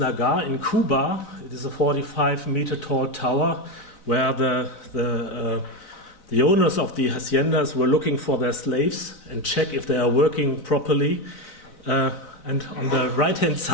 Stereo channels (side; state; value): right; late; 4.0 ms